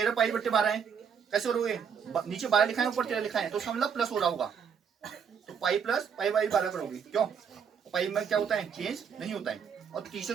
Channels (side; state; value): left; quieter; 7.0 dB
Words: पाई बट्टे 12 है, कैसे करोगे, नीचे 12 लिखा है ऊपर 13 लिखा है, तो इसका मतलब प्लस हो रहा होगा, तो पाई प्लस पाई बाई 12 करोगे, क्यों पाई में क्या होता है चेंज नहीं होता है, और